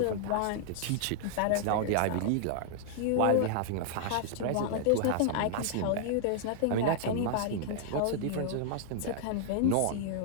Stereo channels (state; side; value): different; both; correlation -0.01